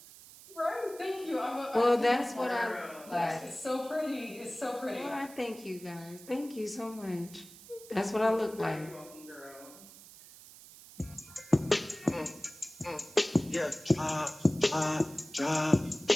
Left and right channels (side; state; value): right; noise; hiss, 19 dB below the sound